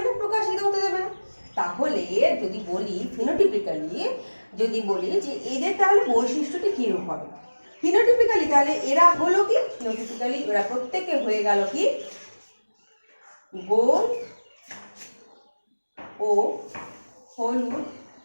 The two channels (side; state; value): both; inverted; correlation -1.00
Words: না, প্রকাশিত হতে দেবে না। তাহলে যদি বলি ফিনোটিপিক্যালি, যদি বলি যে এদের তাহলে বৈশিষ্ট্যটি কিরূপ হবে, ফিনোটিপিক্যালি তাহলে এরা হলো কি, ফিনোটিপিক্যালি এরা প্রত্যেকে হয়ে গেল কি গোল ও হলুদ